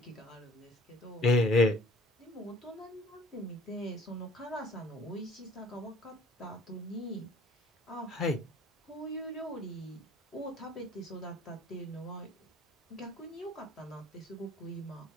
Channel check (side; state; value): both; normal; correlation 0.53